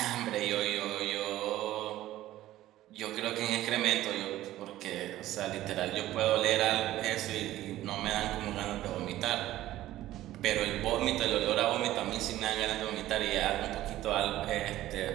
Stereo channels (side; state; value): left; quieter; 14.7 dB